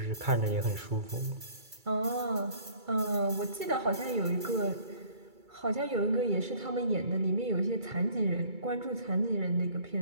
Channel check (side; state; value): left; late; 2.3 ms